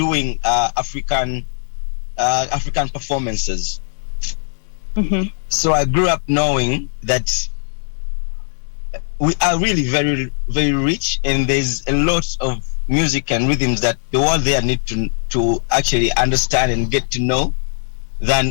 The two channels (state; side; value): silent; right; digital silence